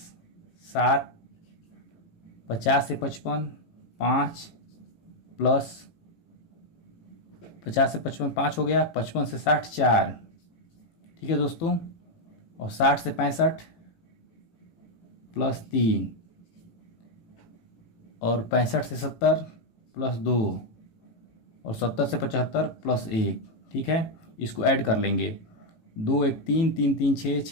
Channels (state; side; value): late; right; 18 ms